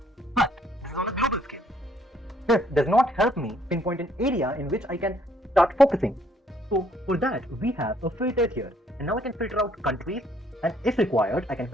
But this is on a global scale. This does not help me pinpoint an area in which I can start focusing. So for that, we have a filter here. And now I can filter out countries, and if required, I can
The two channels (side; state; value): both; normal; correlation 0.65